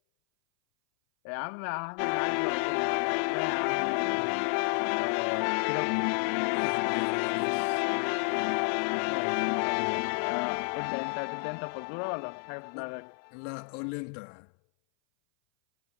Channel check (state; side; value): silent; right; 57 dB below the other